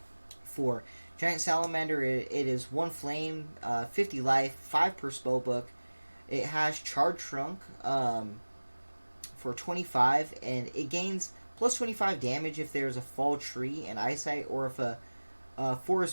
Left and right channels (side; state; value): both; inverted; correlation -1.00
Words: for Giant Salamander, it is 1 Flame, 50 life, 5 per spell book. It has Charge Shrunk for 25, and it gains plus 25 damage if there's a fall tree and eyesight, or if a